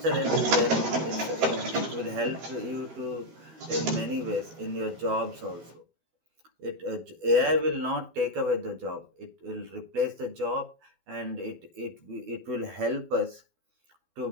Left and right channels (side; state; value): left; late; 12 ms